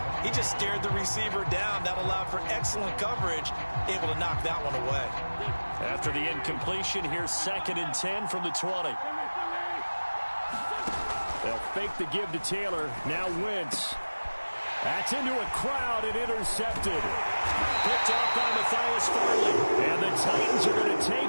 he just stared the receiver down. That allowed for excellent coverage, able to knock that one away. After the incompletion, here's 2nd and 10 from the 20. They'll fake the give to Taylor. Now Wentz. That's into a crowd and intercepted. Picked off by Matthias Farley. And the Titans are going to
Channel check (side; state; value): both; inverted; correlation -1.00